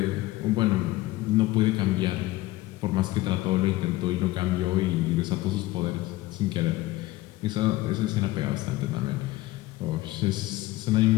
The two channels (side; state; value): right; quieter; 17.9 dB